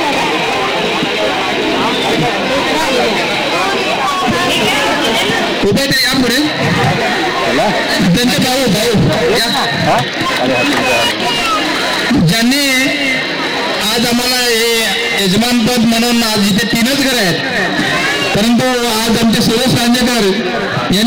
उभे ते या पुढे त्यांचे भाऊ ज्यांनी आज आम्हाला हे यजमानपद म्हणून आज इथे 3च घर आहेत परंतु आज आमचे सुरेश रांजेकर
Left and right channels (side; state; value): both; identical; correlation 1.00